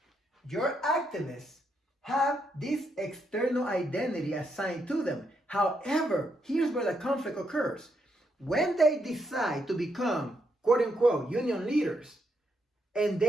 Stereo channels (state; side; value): normal; both; correlation 0.79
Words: Your activists have this external identity assigned to them. However, here's where the conflict occurs. when they decide to become, quote unquote, union leaders, and